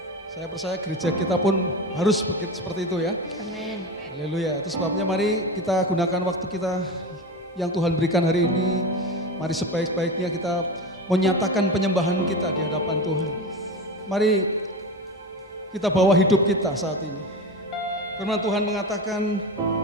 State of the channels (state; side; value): normal; both; correlation 0.24